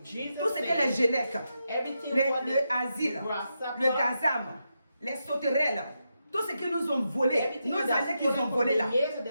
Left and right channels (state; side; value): inverted; both; correlation -0.85